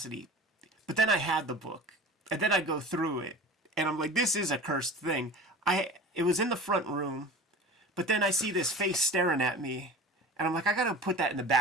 But then I had the book, and then I go through it, and I'm like, this is a cursed thing. It was in the front room, but then I see this face staring at me, and I'm like, I gotta put that in the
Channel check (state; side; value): normal; both; correlation 0.36